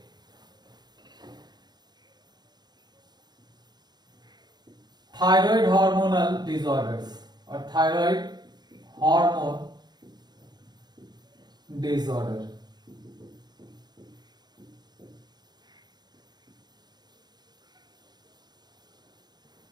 थायराइड हार्मोनल डिसऑर्डर्स और थायराइड हार्मोन डिसऑर्डर।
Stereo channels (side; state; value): left; late; 0.20 ms